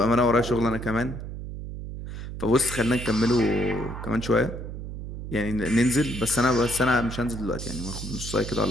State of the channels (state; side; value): noise; right; hum, 8 dB below the sound